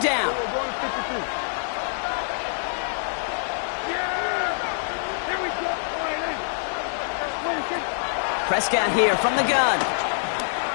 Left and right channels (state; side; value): silent; right; 62 dB below the other